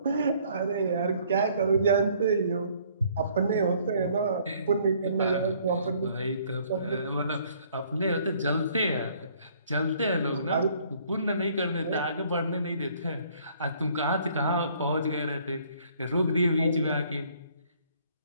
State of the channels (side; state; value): both; inverted; correlation -0.61